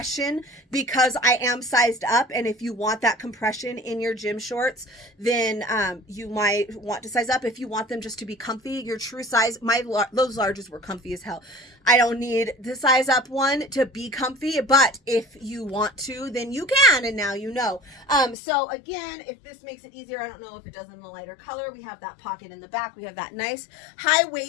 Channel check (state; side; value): drops out; right; at 18.4 s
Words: because I am sized up. And if you want that compression in your gym shorts, then you might want to size up. If you want them just to be comfy, your true size, those larges were comfy as hell. I don't need the size up one to be comfy, but if you want to, then you can, and now you know. So again, if this makes it easier, I don't know if it does in the lighter color. We have that pocket in the back. We have that nice high